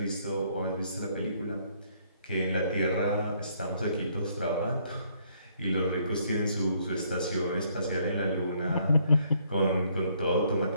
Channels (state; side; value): inverted; both; correlation -0.68